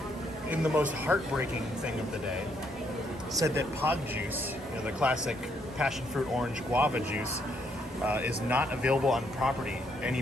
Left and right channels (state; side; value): normal; both; correlation 0.73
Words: in the most heartbreaking thing of the day, said that pog juice, the classic passion fruit orange guava juice, is not available on property